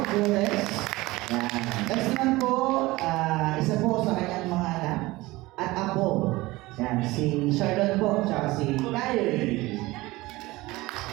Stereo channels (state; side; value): quieter; left; 20.2 dB